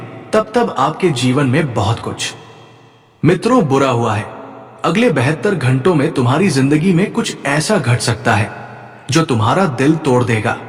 तब तब आपके जीवन में बहुत कुछ मित्रों बुरा हुआ है। अगले 72 घंटों में तुम्हारी जिंदगी में कुछ ऐसा घट सकता है जो तुम्हारा दिल तोड़ देगा,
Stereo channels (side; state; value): both; identical; correlation 1.00